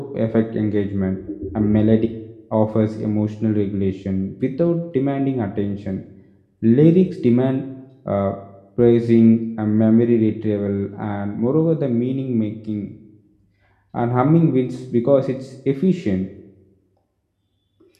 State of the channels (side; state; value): both; identical; correlation 1.00